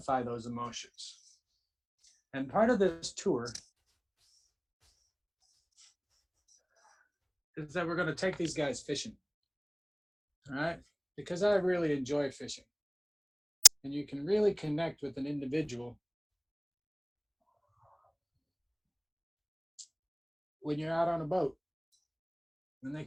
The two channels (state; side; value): identical; both; correlation 1.00